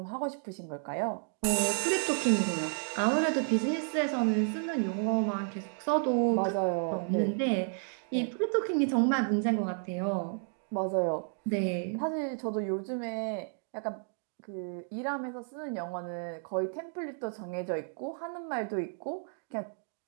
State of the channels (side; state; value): left; silent; 56 dB below the other